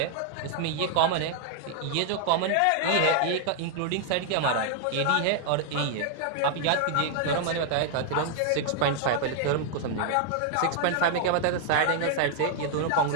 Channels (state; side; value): different; both; correlation 0.00